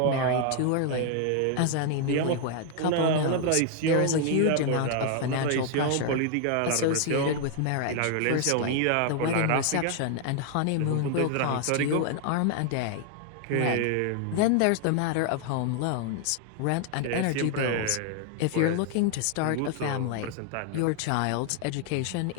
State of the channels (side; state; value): both; different; correlation 0.00